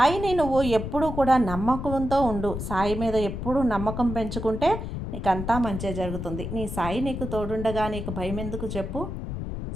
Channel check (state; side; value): noise; left; rumble, 6 dB below the sound